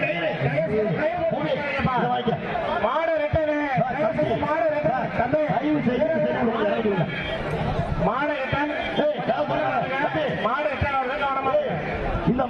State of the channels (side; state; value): both; identical; correlation 1.00